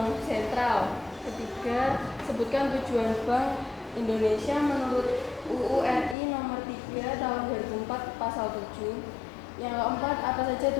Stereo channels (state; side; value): drops out; right; at 6.2 s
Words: sentral. Ketiga, sebutkan tujuan Bank Indonesia menurut UU RI nomor 3 tahun 2004 pasal 7. Yang keempat, apa saja